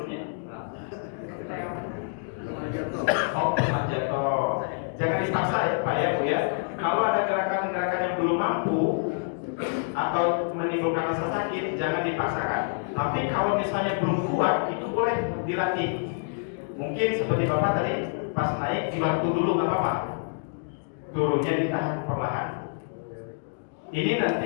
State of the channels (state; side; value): silent; right; digital silence